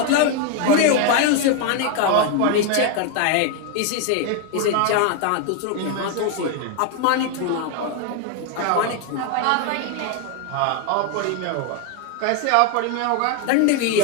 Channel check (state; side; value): different; both; correlation 0.01